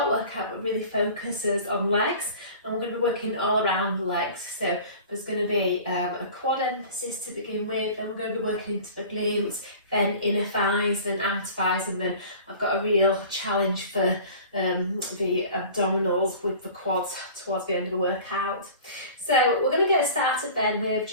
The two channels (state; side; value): inverted; both; correlation -0.42